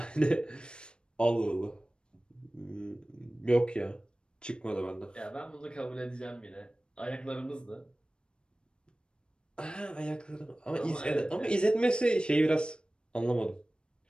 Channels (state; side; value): late; right; 0.053 ms